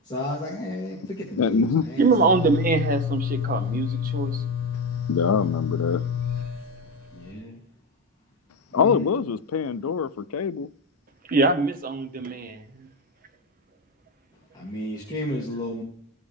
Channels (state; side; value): normal; both; correlation 0.15